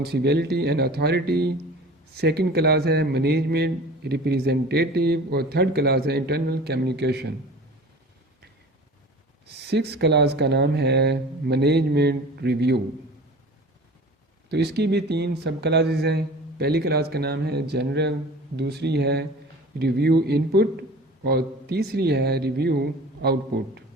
and authority, second class ہے مینجمنٹ ریپریزنٹیٹیو اور تھرڈ کلاس ہے انٹرنل کمیونیکیشن۔ 6 کلاس کا نام ہے مینجمنٹ ریویو۔ تو اس کی بھی 3 سب کلاسز ہیں۔ پہلی کلاس کا نام ہے جنرل، دوسری ہے ریویو ان پٹ اور تیسری ہے ریویو آؤٹ پٹ۔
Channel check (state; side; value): normal; both; correlation 0.40